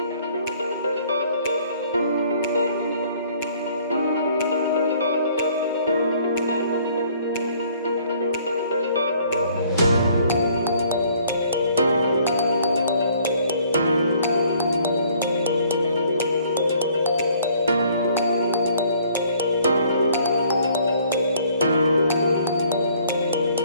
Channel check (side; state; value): both; inverted; correlation -0.60